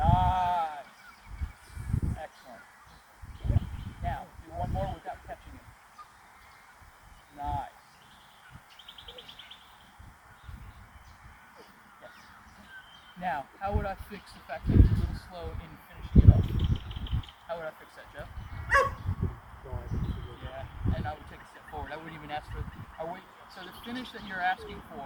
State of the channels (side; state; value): both; identical; correlation 1.00